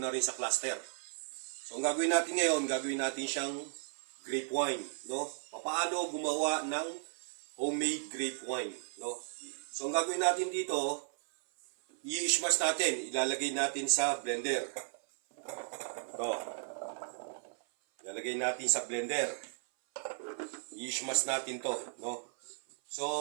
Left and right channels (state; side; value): silent; left; 54 dB below the other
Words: na rin sa cluster. So ang gagawin natin ngayon, gagawin natin siyang grape wine, no? Paano gumawa ng homemade grape wine, no? So ang gagawin natin dito, i-smash natin, ilalagay natin sa blender. Ito. Ilalagay natin sa blender. I-smash natin to, no? So